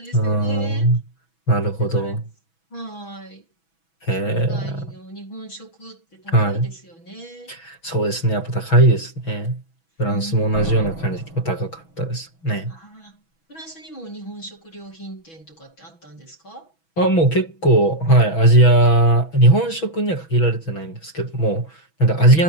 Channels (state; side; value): late; right; 6.1 ms